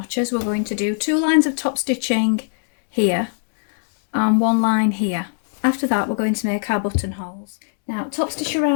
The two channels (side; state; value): right; silent; digital silence